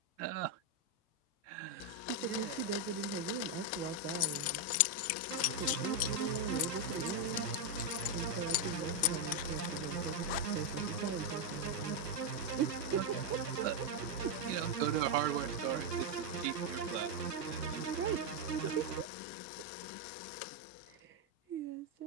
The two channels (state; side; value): normal; both; correlation 0.02